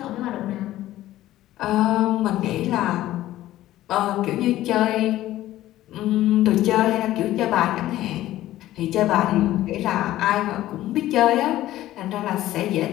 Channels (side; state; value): right; quieter; 14.6 dB